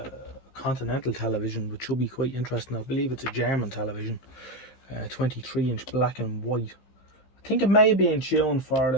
Continental television, which should be quite interesting. I believe it's a German television, 23-inch black and white. I think it may be in tune for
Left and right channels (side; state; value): right; late; 15 ms